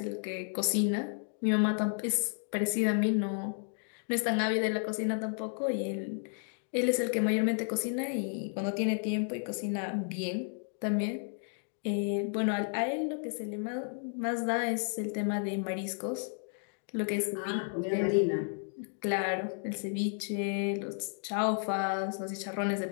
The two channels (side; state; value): right; silent; 56 dB below the other